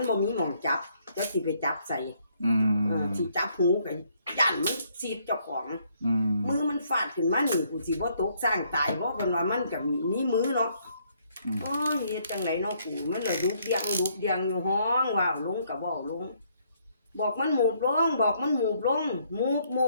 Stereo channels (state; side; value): inverted; both; correlation -0.69